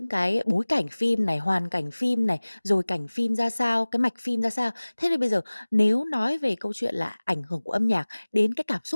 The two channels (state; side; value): inverted; both; correlation -1.00